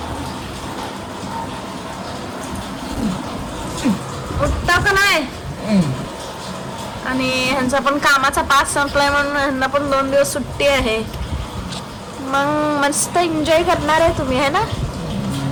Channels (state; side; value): identical; both; correlation 1.00